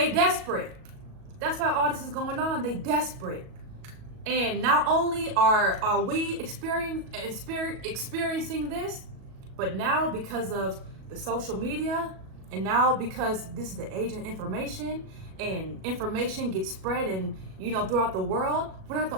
desperate. That's why all this is going on. They desperate. And not only are we experiencing this, But now, because of the social media, and now because this is the age of information, and information gets spread and throughout the world, we're not the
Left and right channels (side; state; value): left; late; 37 ms